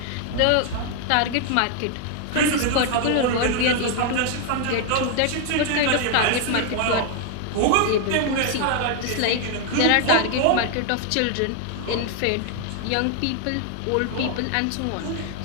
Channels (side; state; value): both; different; correlation 0.00